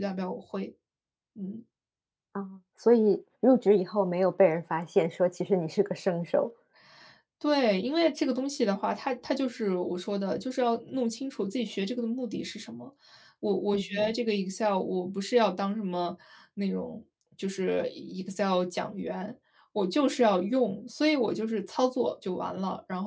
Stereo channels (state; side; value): identical; both; correlation 1.00